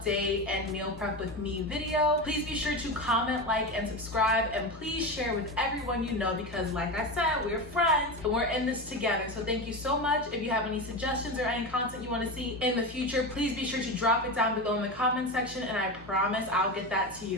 and meal prep with me video. Please be sure to comment, like, and subscribe, and please share with everyone you know because, like I said, we're friends and we're in this together. So thank you so much. If you have any suggestions or any content you want to see in the future, please be sure to drop it down below in the comment section, and I promise I'll get that to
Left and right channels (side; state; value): both; normal; correlation 0.21